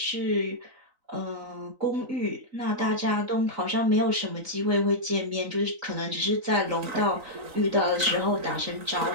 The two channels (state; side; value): late; left; 3.9 ms